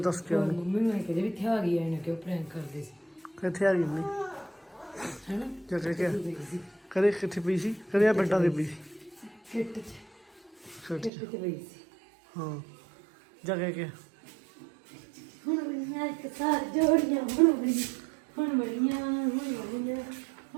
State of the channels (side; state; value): left; drops out; at 11.1 s